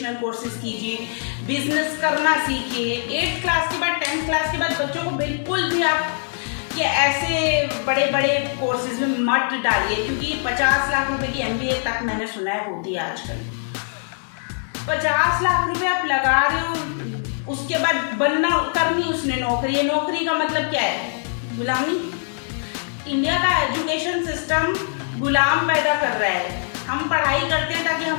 कोर्सेज कीजिए, बिजनेस करना सीखिए। 8th क्लास के बाद 10th क्लास के बाद बच्चों को बिल्कुल भी आप ये ऐसे बड़े बड़े कोर्सेज में मत डालिए, क्योंकि 50 लाख रुपए की MBA तक मैंने सुना है होती है आजकल। 50 लाख रुपए आप लगा रहे हो, उसके बाद बनना करनी उसने नौकरी। नौकरी का मतलब क्या है, गुलामी। इंडिया का एजुकेशन सिस्टम गुलाम पैदा कर रहा है। हम पढ़ाई करते हैं ताकि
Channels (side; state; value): right; silent; digital silence